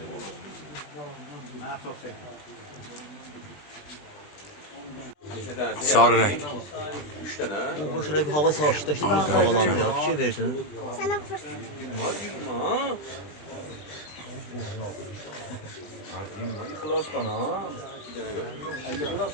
Sarı rəng. O şöyle bir hava savaştıkta havalanmıyor. Bir şey verdin. Sana fırsat.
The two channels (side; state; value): right; late; 20 ms